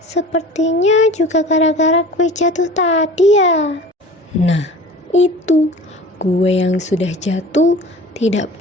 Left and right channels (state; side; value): normal; both; correlation 0.41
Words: juga gara-gara kue jatuh tadi ya. Nah, itu. Kue yang sudah jatuh tidak